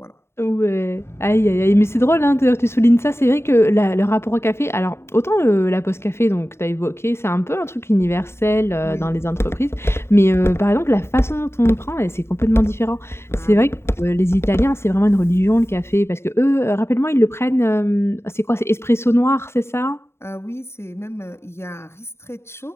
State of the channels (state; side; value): late; right; 0.12 ms